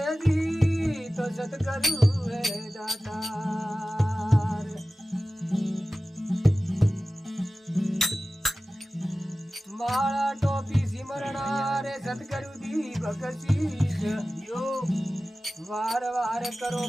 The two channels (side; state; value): both; normal; correlation 0.96